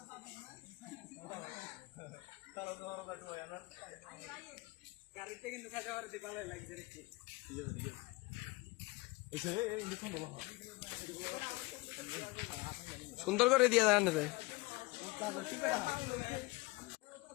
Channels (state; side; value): quieter; right; 23.3 dB